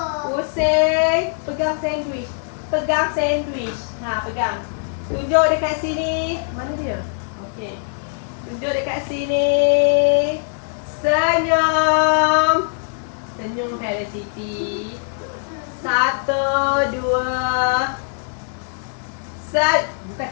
Pusing. Pegang sandwich. Pegang sandwich. Ha, pegang. Tunjuk dekat sini. Mana dia? Okey. Tunjuk dekat sini. Senyum. Senyum Felicity. 1, 2. Bukan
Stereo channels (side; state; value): right; silent; digital silence